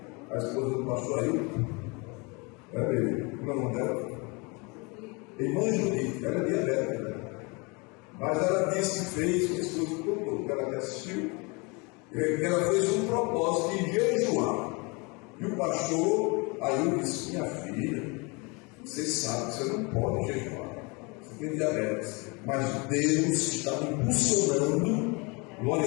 a esposa do pastor Ailton. Como é o nome dela? Irmã Judite, ela é diabética. Mas ela disse que fez um estudo todo, que ela me assistiu, que ela fez um propósito de jejuar. E o pastor Ailton disse: minha filha, você sabe que você não pode jejuar. Você tem diabetes. Mas Deus está me impulsionando, glória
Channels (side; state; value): right; quieter; 29.3 dB